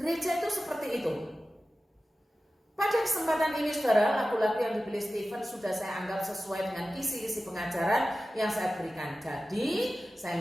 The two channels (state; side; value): normal; both; correlation 0.95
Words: itu seperti itu. Pada kesempatan ini saudara, lagu-lagu yang dipilih Stephen sudah saya anggap sesuai dengan kisi-kisi pengajaran yang saya berikan. Jadi, saya